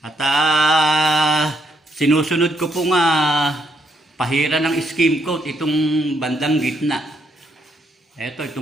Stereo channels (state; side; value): normal; both; correlation 0.75